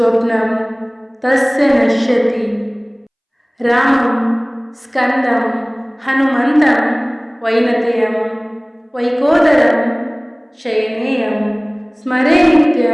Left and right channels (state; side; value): identical; both; correlation 1.00